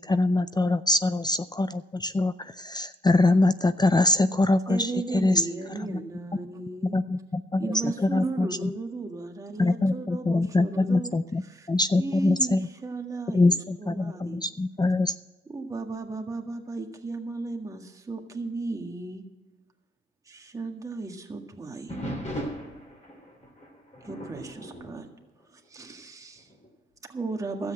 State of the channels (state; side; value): normal; both; correlation 0.78